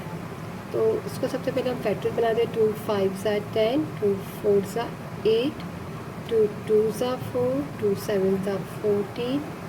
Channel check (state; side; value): identical; both; correlation 1.00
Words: तो इसको सबसे पहले हम फैक्टर बना दें। 2 5 सा 10, 2 4 सा 8, 2 2 सा 4, 2 7 सा 14,